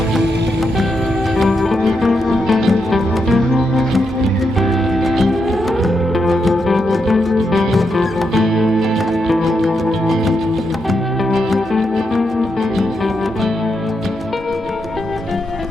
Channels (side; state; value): both; normal; correlation 0.83